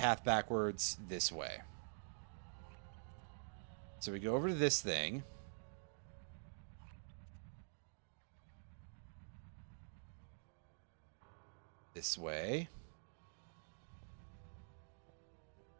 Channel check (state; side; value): silent; left; digital silence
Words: backwards this way. So we go over to this thing. This way.